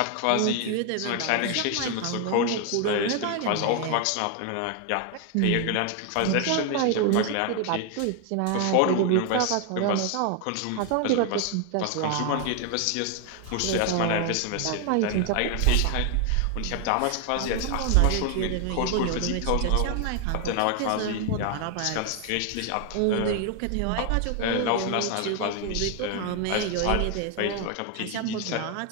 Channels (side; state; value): both; different; correlation 0.01